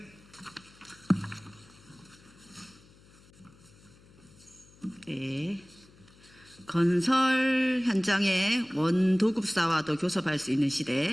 네. 건설 현장에 원도급사와도 교섭할 수 있는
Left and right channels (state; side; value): noise; left; hum, 26 dB below the sound